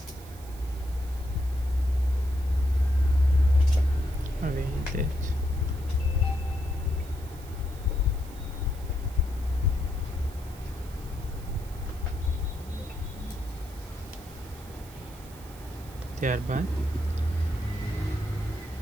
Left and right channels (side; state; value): right; noise; hiss, 21 dB below the sound